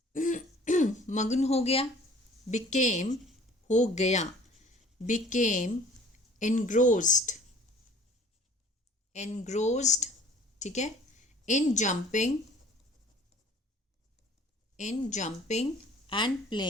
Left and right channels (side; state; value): both; normal; correlation 0.51